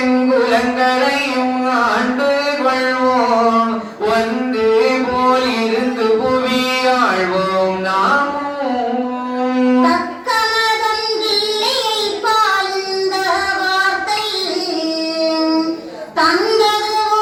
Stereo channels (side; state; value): both; identical; correlation 1.00